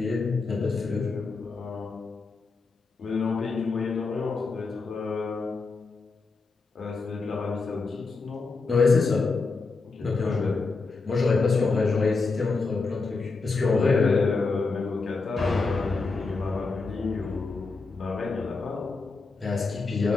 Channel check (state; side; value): quieter; right; 4.1 dB